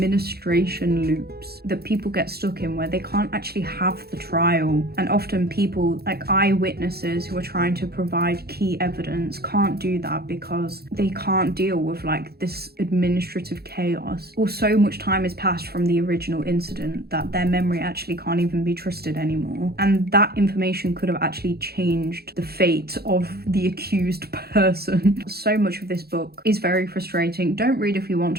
loops that people get stuck in where they can't actually have the trial. And often people, like eyewitnesses who are trying to provide key evidence, can't do that because they can't deal with like this administrative chaos. Or so much time has passed from the original incident that their memory actually can't even be trusted anymore. And that information could have actually changed the fate of the accused person. So much of this book is very frustrating. Don't read if you want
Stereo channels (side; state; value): left; late; 0.46 ms